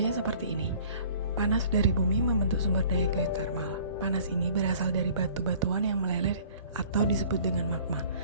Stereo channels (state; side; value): inverted; both; correlation -0.51